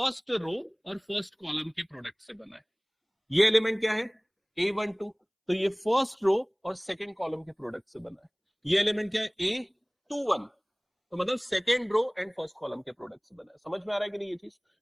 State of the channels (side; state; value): both; identical; correlation 1.00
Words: रो और फर्स्ट कॉलम के प्रोडक्ट से बना है। ये एलिमेंट क्या है? A12, तो ये फर्स्ट रो और सेकंड कॉलम के प्रोडक्ट से बना है। ये एलिमेंट क्या है? A21, तो मतलब second row and first column के प्रोडक्ट से बना है। समझ में आ रहा है कि नहीं? ये चीज